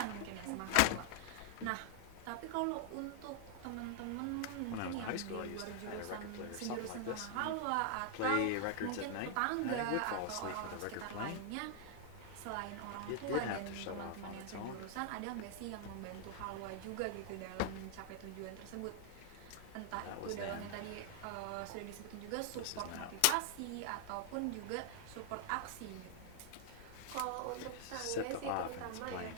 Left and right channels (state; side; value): different; both; correlation 0.00